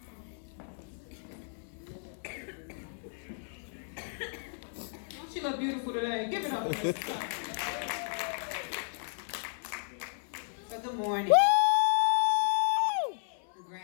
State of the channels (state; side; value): silent; right; 56 dB below the other